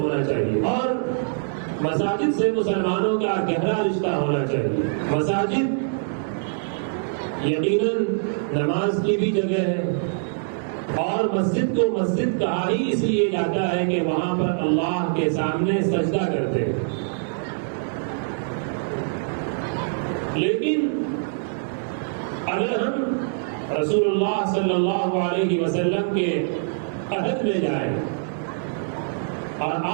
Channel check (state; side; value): silent; left; digital silence